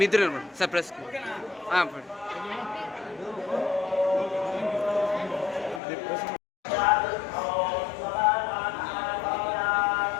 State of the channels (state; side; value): drops out; right; at 5.8 s